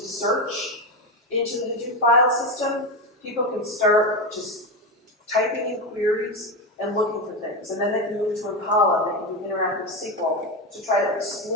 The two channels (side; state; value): both; normal; correlation 0.14